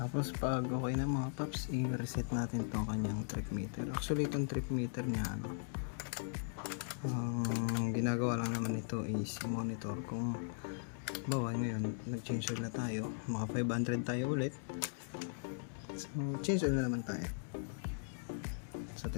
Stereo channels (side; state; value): right; silent; digital silence